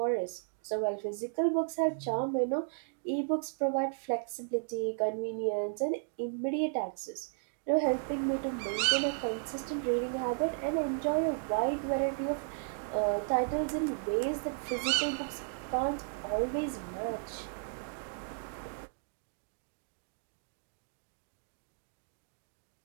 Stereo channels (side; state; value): left; silent; digital silence